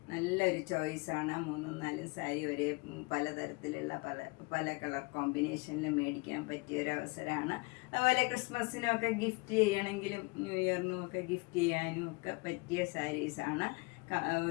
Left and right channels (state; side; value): quieter; right; 28.0 dB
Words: നല്ലൊരു ചോയ്സാണ്. 3-4 സാരി ഒരേ പലതരത്തിലുള്ള പല കളർ കോമ്പിനേഷനിൽ മേടിക്കാൻ പറ്റിയ ഒരു അവസരമാണ്. അതുപോലെ ക്രിസ്മസിനൊക്കെ ഗിഫ്റ്റ് ചെയ്യണമെങ്കിലും ന്യൂ ഇയറിനും ഒക്കെ ഗിഫ്റ്റ് ചെയ്യാനും ഒക്കെ പറ്റിയ സാരീസാണ്.